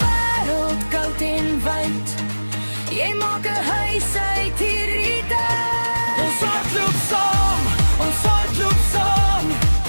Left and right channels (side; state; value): both; inverted; correlation -1.00